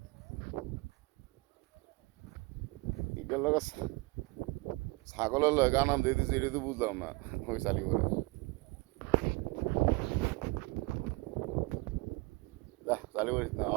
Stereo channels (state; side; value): quieter; left; 25.1 dB